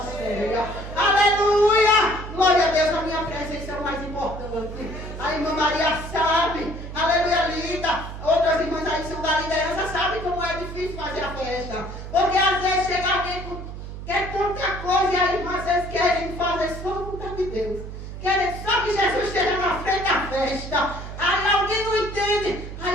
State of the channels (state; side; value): noise; right; hum, 10 dB below the sound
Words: Aleluia! Glória a Deus, a minha presença é o mais importante. A irmã Maria sabe. Aleluia, Lida. Outras irmãs aí são da liderança, sabem como é difícil fazer a festa. Porque às vezes chega alguém com quer tanta coisa e aí irmãs vocês querem fazer só a vontade de Deus. Querem só que Jesus esteja na frente da festa. Aí alguém não entende.